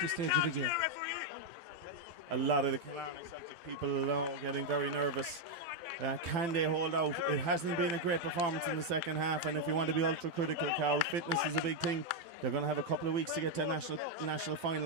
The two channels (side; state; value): left; late; 12 ms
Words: stage of the game. A lot of the Killarney Celtic people now getting very nervous. Can they hold out? It hasn't been a great performance in the second half, and if you want to be ultra critical, Carol, fitness is a big thing. They're going to have a couple of weeks to get to a national